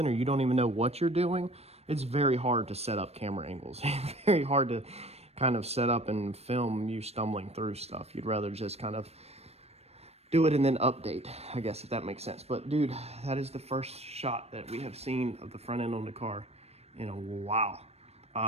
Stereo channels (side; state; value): left; late; 0.30 ms